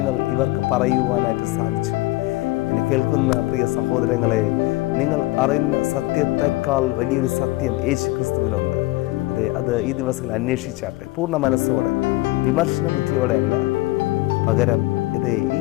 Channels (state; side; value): quieter; right; 20.1 dB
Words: ഇവർക്ക് പറയുവാനായിട്ട് സാധിച്ചു. എന്നെ കേൾക്കുന്ന പ്രിയ സഹോദരങ്ങളെ, നിങ്ങൾ അറിയുന്ന സത്യത്തെക്കാൾ വലിയൊരു സത്യം യേശു ക്രിസ്തുവിലുണ്ട്. അത് ഈ ദിവസങ്ങളിൽ അന്വേഷിച്ചാട്ടെ, പൂർണ്ണ മനസ്സോടെ, വിമർശന ബുദ്ധിയോടെ അല്ല, പകരം ഈ